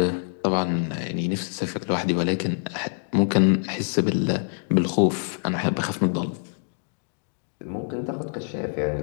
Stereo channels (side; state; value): right; silent; 62 dB below the other